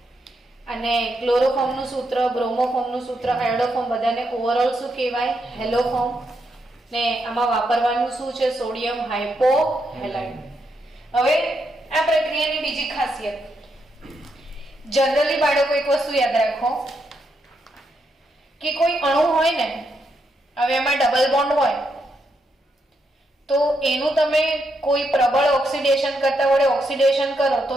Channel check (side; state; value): both; normal; correlation 0.80